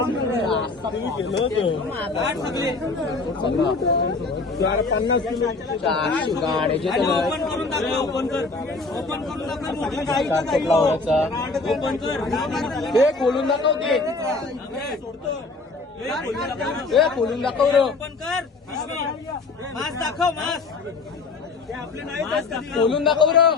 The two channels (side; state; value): right; quieter; 3.8 dB